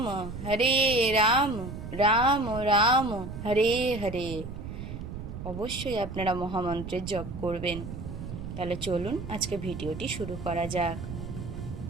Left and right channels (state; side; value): noise; right; rumble, 8 dB below the sound